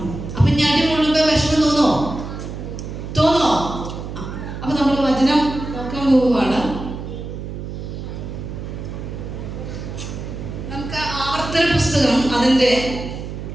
അപ്പൊ ഞാൻ അടി കൊള്ളുമ്പോ വിഷമം തോന്നോ? അപ്പൊ നമ്മൾ വചനം നോക്കാൻ പോവുകയാണ്. നമുക്ക് ആവർത്തന പുസ്തകം അതിന്റെ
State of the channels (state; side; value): noise; right; hum, 8 dB below the sound